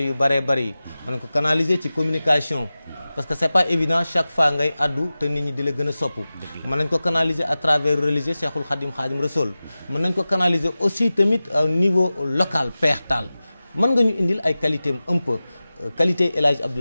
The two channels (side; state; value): both; inverted; correlation -0.96